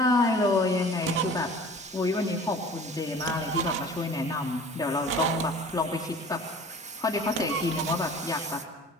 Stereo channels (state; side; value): normal; both; correlation 0.44